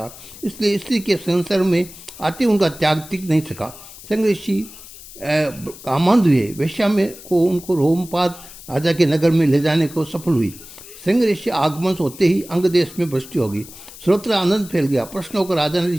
इसलिए स्त्री के संसार में आते उनका त्याग टिक नहीं सका। श्रृंग ऋषि कामांध हुए। वैश्या में को उनको रोमपाद राजा के नगर में ले जाने को सफल हुई। श्रृंग ऋषि आगमन होते ही अंग देश में वृष्टि हो गई। सर्वत्र आनंद फैल गया। प्रश्न होकर राजा ने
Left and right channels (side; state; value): left; noise; hiss, 17 dB below the sound